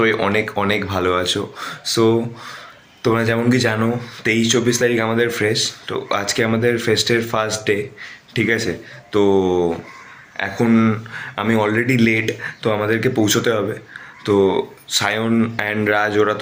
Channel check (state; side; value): identical; both; correlation 1.00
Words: অনেক অনেক ভালো আছো। সো তোমরা যেমন কি জানো, 23-24 তারিখ আমাদের ফ্রেশ। তো আজকে আমাদের ফেস্টের ফার্স্ট ডে, ঠিক আছে? তো এখন আমি অলরেডি লেট, তো আমাদেরকে পৌঁছতে হবে। তো সায়ন অ্যান্ড রাজ ওরা